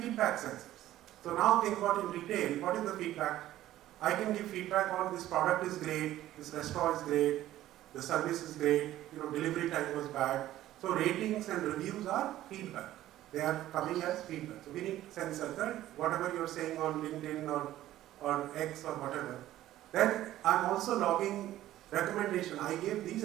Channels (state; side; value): quieter; left; 14.0 dB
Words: sensors. So now think about in retail, what is the feedback? I can give feedback on this product is great, this restaurant is great, the service is great, delivery time was bad. So ratings and reviews are feedback. They are coming as feedback. So we need sensors, right? Whatever you're saying on LinkedIn or X or whatever. Then I'm also logging recommendation. I gave these